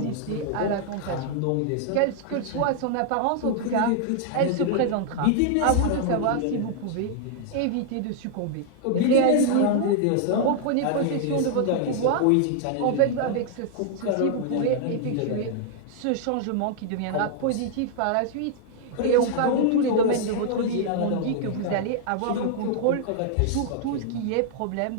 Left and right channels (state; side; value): different; both; correlation -0.01